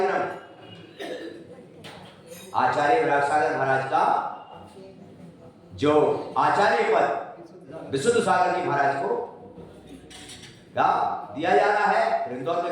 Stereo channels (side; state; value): both; identical; correlation 1.00